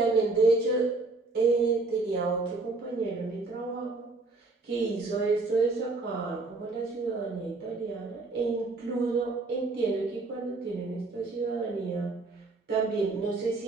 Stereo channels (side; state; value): left; quieter; 3.6 dB